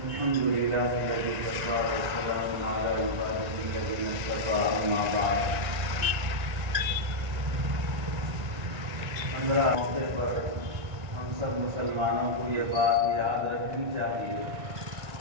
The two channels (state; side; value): late; left; 1.7 ms